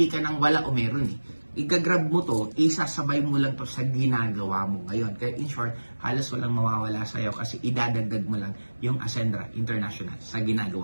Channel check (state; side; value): inverted; both; correlation -1.00